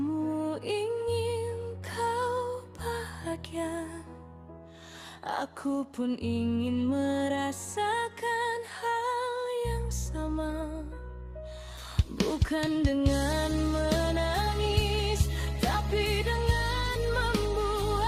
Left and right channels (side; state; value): both; identical; correlation 1.00